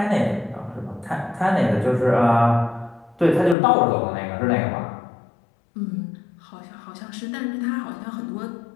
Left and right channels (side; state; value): right; drops out; at 3.6 s